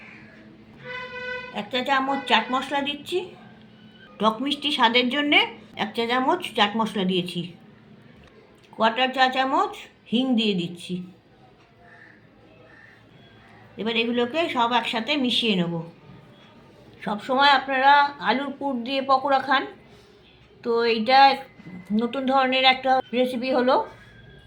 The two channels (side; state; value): both; identical; correlation 1.00